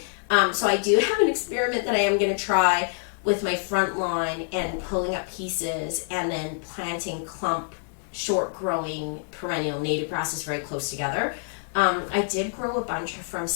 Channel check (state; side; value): silent; right; digital silence